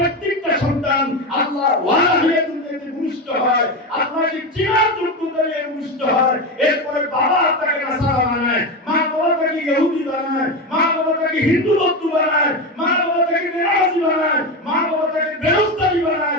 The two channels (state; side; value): normal; both; correlation 0.17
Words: সন্তান আল্লাহ ওয়ালা হয়ে দুনিয়াতে ভূমিষ্ঠ হয়, আল্লাহকে চিনার যোগ্যতা নিয়ে ভূমিষ্ঠ হয়। এরপরে বাবা তাকে নাসারা বানায়, মা বাবা তাকে ইহুদি বানায়, মা বাবা তাকে হিন্দু বৌদ্ধ বানায়, মা বাবা তাকে বেনামাজি বানায়, মা বাবা তাকে বেরোজগারি